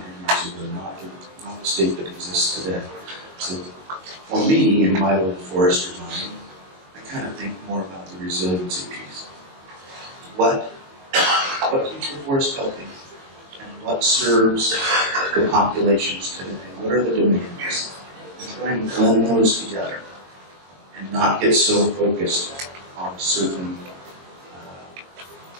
years ago, not the state that exists today. So for me, in my little forester mind, I kind of think more about the resiliency piece. What keeps the forest healthy? And what serves the populations today? What are the demands? And try and blend those together and not get so focused on a certain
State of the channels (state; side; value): late; left; 22 ms